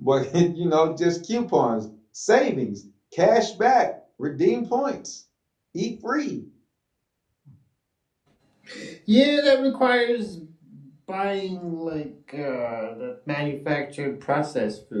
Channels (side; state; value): both; identical; correlation 1.00